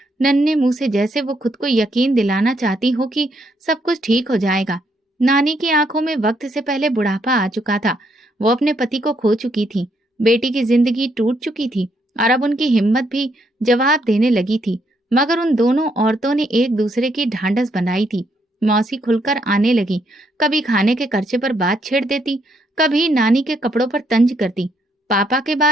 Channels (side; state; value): both; normal; correlation 0.74